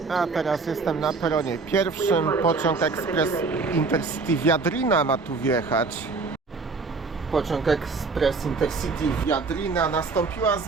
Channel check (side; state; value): left; quieter; 4.1 dB